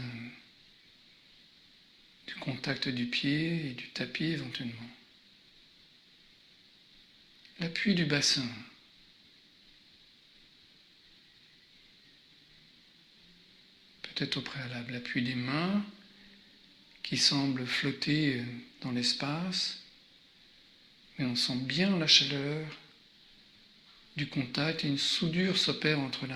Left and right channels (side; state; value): both; identical; correlation 1.00